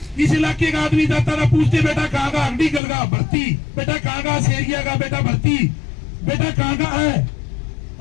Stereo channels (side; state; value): right; drops out; at 2.8 s